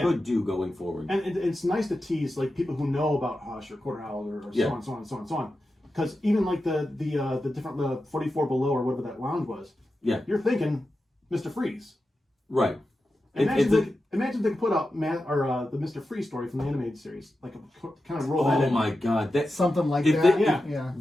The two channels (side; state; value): both; normal; correlation 0.91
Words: do going forward. And it's nice to tease like people who know about Hush or Quarter Owl or so on, so on, so on, so on. Because even like the different 44 Below or whatever that lounge was, you're thinking Mr. Freeze. Right. Imagine if they could put out the Mr. Freeze story from the animated series, like kind of roll that in. Oh my God, that's something like